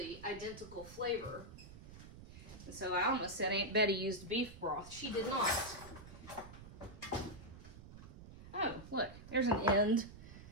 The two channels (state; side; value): noise; right; rumble, 15 dB below the sound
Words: identical flavor. And so I almost said Aunt Betty used beef broth. She did not. Oh, look, there's an end